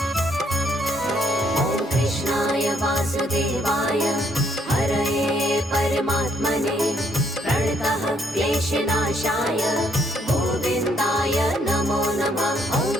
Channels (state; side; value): normal; both; correlation 0.70